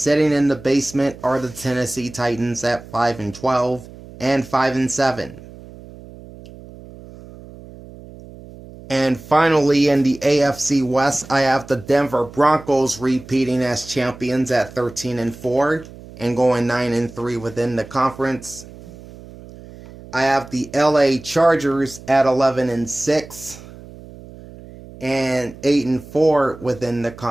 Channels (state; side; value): noise; right; hum, 18 dB below the sound